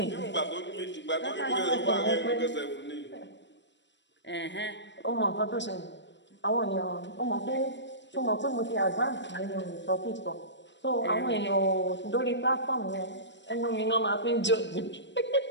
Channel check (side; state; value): right; late; 0.53 ms